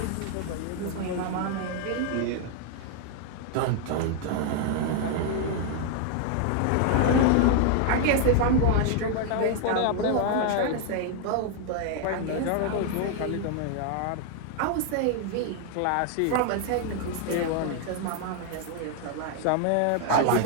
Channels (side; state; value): both; different; correlation 0.00